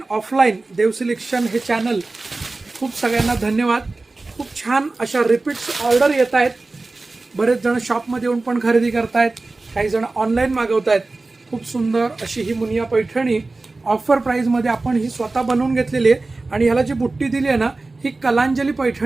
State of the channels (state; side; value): quieter; left; 3.4 dB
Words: ऑफलाईन देव सिलेक्शन हे चॅनल खूप सगळ्यांना धन्यवाद। खूप छान अशा रिपीट्स ऑर्डर येत आहेत। बरेच जण शॉपमध्ये येऊन पण खरेदी करतायत, काही जण ऑनलाईन मागवतायत। खूप सुंदर अशी ही मुनिया पैठणी ऑफर प्राइसमध्ये आपण ही स्वतः बनवून घेतलेली आहे आणि ह्याला जी बुट्टी दिली आहे ना, ही कलांजली